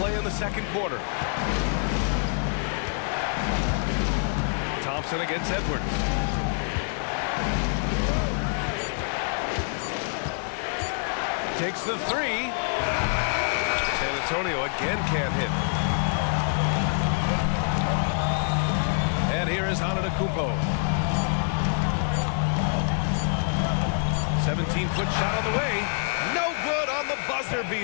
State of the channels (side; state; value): right; silent; 61 dB below the other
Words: in the second quarter. Thompson against Edwards. Takes the three. San Antonio again can't hit. And here is Antetokounmpo. 17-foot shot on the way. No good on the buzzer